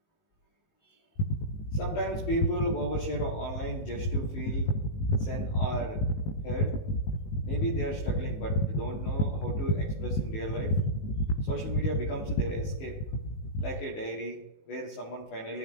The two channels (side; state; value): right; late; 19 ms